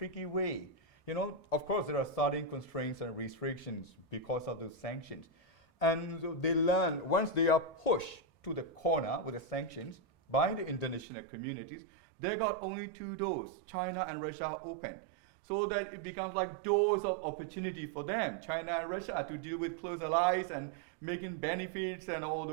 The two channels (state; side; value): drops out; left; at 11.1 s